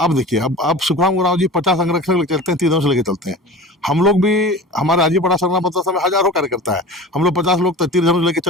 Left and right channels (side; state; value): both; normal; correlation 0.35